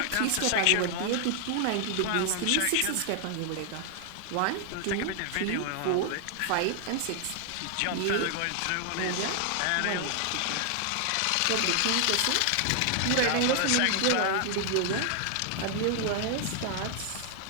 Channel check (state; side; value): different; both; correlation 0.00